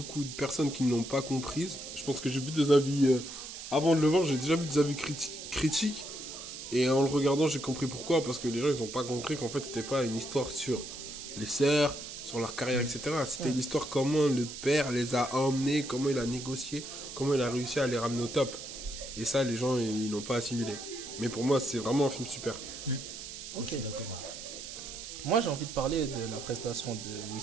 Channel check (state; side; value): noise; right; hiss, 10 dB below the sound